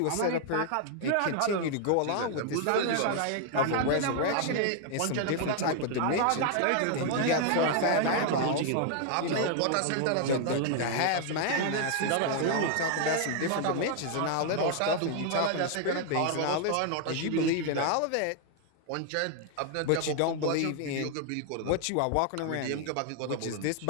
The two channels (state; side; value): different; both; correlation 0.00